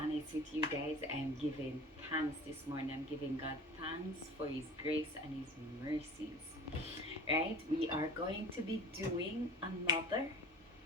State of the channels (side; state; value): both; normal; correlation 0.41